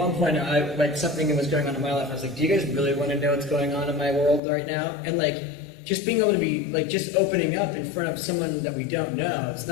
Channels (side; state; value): right; drops out; at 4.4 s